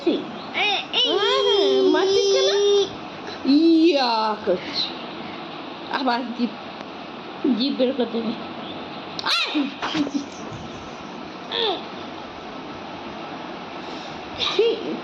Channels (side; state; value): both; identical; correlation 1.00